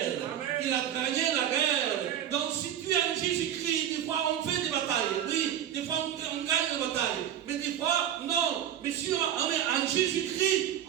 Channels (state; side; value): quieter; left; 10.3 dB